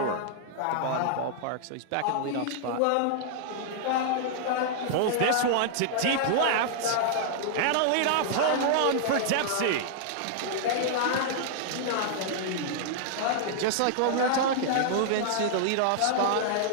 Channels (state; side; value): different; both; correlation -0.01